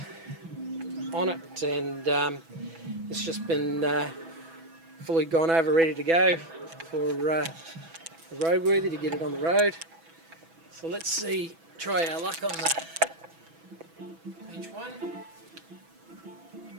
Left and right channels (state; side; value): late; left; 6.1 ms